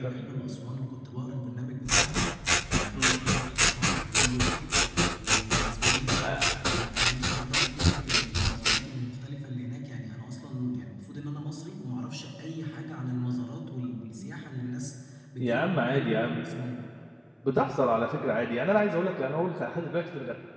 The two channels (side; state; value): both; identical; correlation 1.00